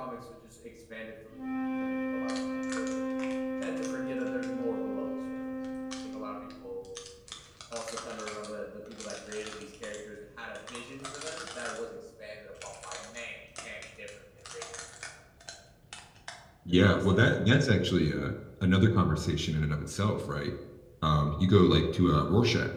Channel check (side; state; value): both; identical; correlation 1.00